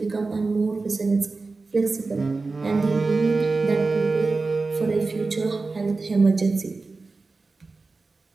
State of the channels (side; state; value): left; quieter; 3.8 dB